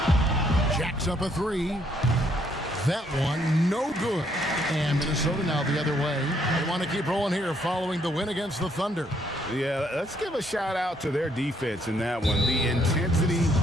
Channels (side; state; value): both; normal; correlation 0.70